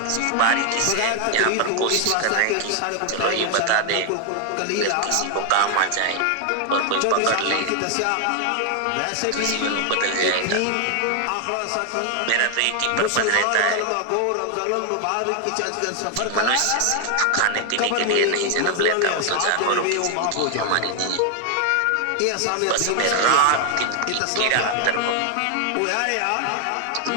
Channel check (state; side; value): different; both; correlation 0.00